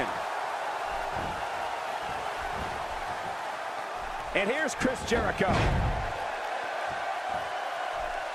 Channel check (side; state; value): both; identical; correlation 1.00